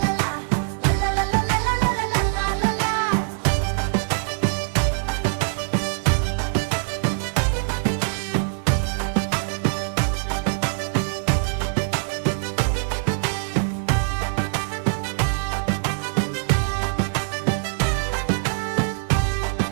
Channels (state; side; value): silent; left; 63 dB below the other